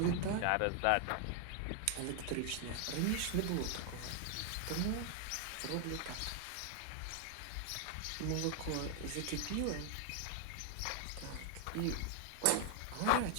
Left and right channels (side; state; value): both; different; correlation 0.00